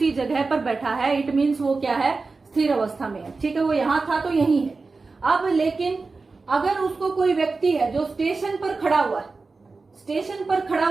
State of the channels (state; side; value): quieter; left; 4.0 dB